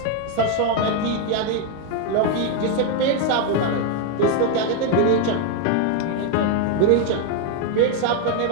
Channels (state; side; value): different; both; correlation 0.01